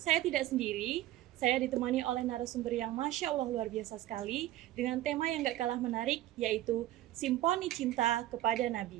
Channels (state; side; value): quieter; left; 14.6 dB